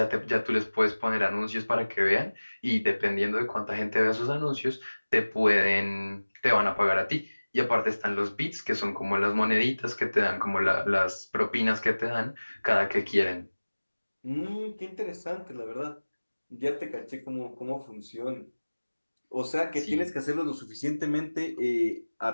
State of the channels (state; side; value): inverted; both; correlation -1.00